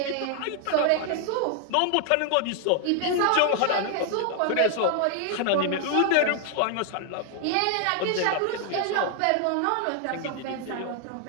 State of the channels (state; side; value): different; both; correlation 0.00